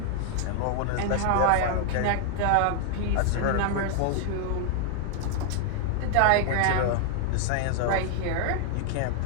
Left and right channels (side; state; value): both; different; correlation 0.00